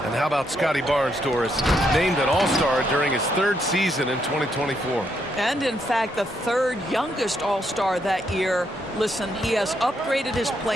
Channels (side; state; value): both; normal; correlation 0.76